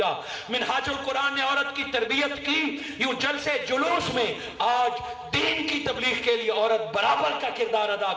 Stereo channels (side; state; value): both; identical; correlation 1.00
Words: मिनहाजुल कुरान ने औरत की तरबियत की, यूं जलसे जुलूस में आज दीन की तबलीग के लिए औरत बराबर का किरदार अदा